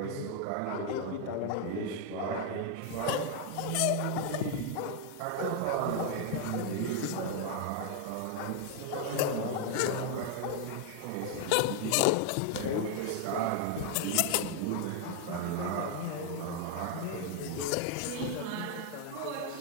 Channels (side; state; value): both; different; correlation 0.00